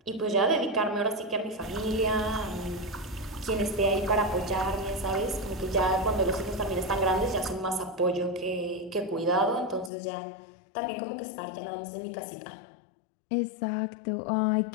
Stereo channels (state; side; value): drops out; right; at 9.9 s